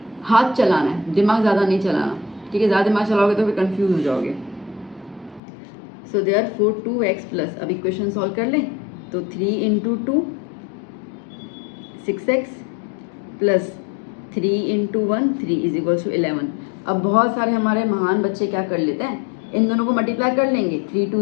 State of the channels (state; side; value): drops out; right; at 5.4 s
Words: हाथ चलाना है, दिमाग ज़्यादा नहीं चलाना, ठीक है। ज़्यादा दिमाग चलाओगे तो फिर कंफ्यूज हो जाओगे। सो देयरफॉर 2x प्लस, अब इक्वेशन सॉल्व कर लें, तो 3 into 2 6x plus 3 into 1 3 is equals to 11। अब बहुत सारे हमारे महान बच्चे क्या कर लेते हैं, इन दोनों को मल्टीप्लाई कर लेंगे, 3